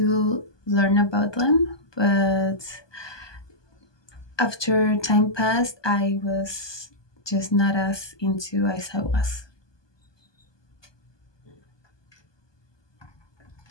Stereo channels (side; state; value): right; late; 1.2 ms